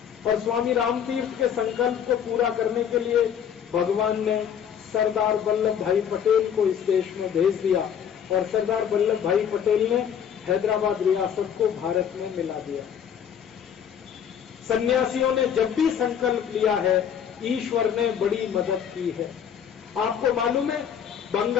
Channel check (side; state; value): right; quieter; 8.4 dB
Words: और स्वामी रामतीर्थ के संकल्प को पूरा करने के लिए भगवान ने सरदार वल्लभ भाई पटेल को इस देश में भेज दिया और सरदार वल्लभ भाई पटेल ने हैदराबाद रियासत को भारत में मिला दिया। सन्यासियों ने जब भी संकल्प लिया है ईश्वर ने बड़ी मदद की है। आपको मालूम है